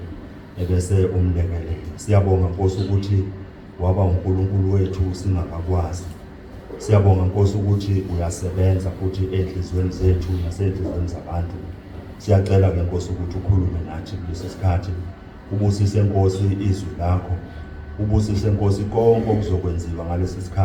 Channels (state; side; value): identical; both; correlation 1.00